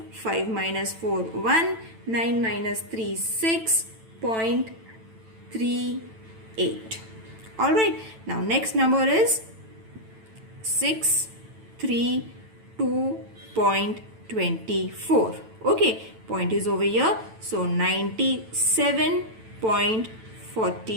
5 minus 4, 1. 9 minus 3, 6.38. Alright. Now next number is 632.24. Okay. Point is over here. So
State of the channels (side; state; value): left; late; 9.0 ms